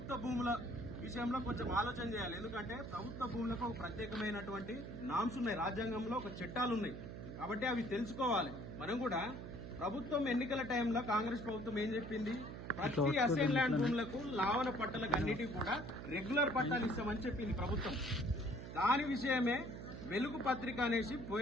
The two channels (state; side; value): noise; right; hum, 9 dB below the sound